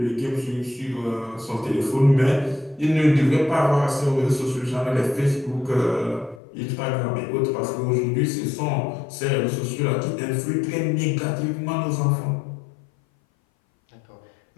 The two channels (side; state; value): right; drops out; at 6.4 s